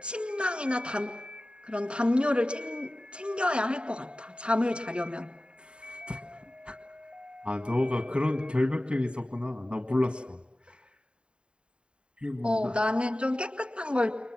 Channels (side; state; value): left; late; 0.052 ms